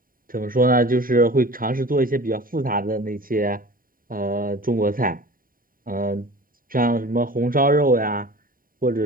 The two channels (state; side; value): late; left; 0.41 ms